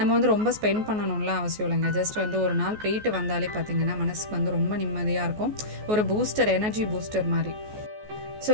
வந்து ரொம்ப ஸ்பெண்ட் பண்ணணும்லாம் அவசியம் இல்லைங்க. ஜஸ்ட் வந்து ஒரு நாள் போயிட்டு வந்தாலே பார்த்திங்கன்னா மனசுக்கு வந்து ரொம்ப நிம்மதியாக இருக்கும். ஒரு பூஸ்டர், எனர்ஜி பூஸ்டர் மாதிரி. ஸோ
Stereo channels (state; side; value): late; left; 14 ms